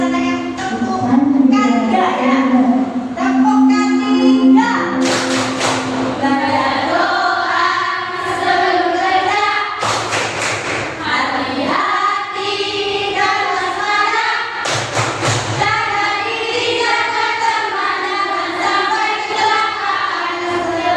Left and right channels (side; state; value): both; identical; correlation 1.00